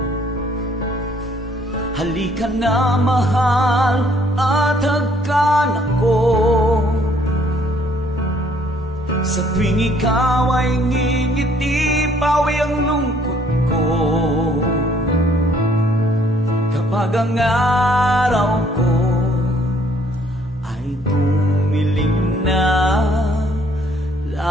Halika na, mahal, at hagkan ako. Sa tuwing ikaw ay ngingiti, pawi ang lungkot ko. Kapag ang araw ko ay dumilim na,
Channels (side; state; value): both; normal; correlation 0.63